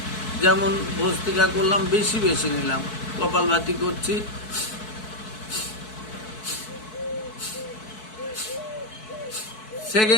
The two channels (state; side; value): late; right; 4.6 ms